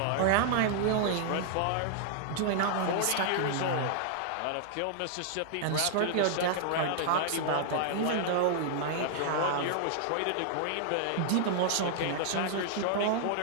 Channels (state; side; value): different; both; correlation -0.01